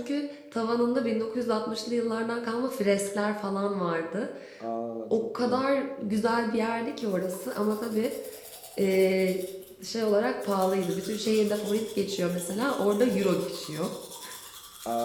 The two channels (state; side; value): identical; both; correlation 1.00